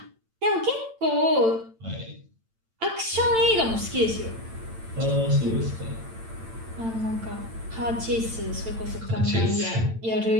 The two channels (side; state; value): left; late; 8.9 ms